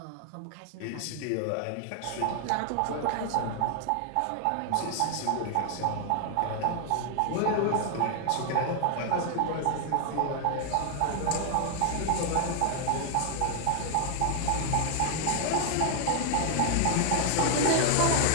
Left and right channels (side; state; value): both; different; correlation 0.00